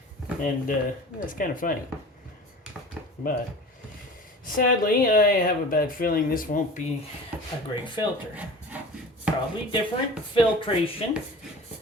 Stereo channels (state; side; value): normal; both; correlation 0.38